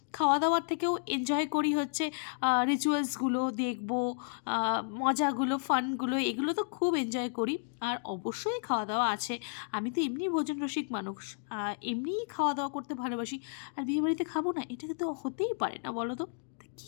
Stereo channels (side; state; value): right; silent; digital silence